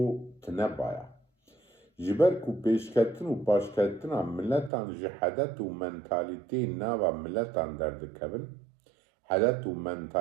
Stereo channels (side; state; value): left; drops out; at 4.7 s